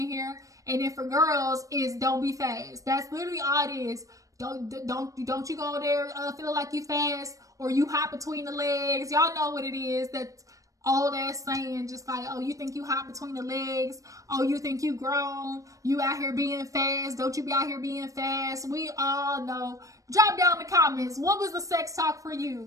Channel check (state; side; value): late; left; 0.16 ms